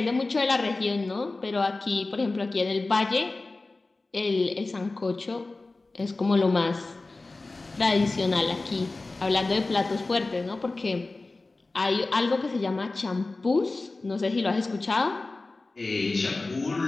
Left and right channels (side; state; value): right; quieter; 3.3 dB